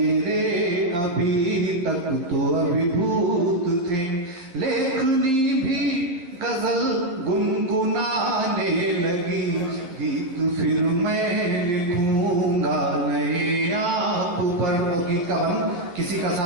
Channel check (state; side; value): late; left; 11 ms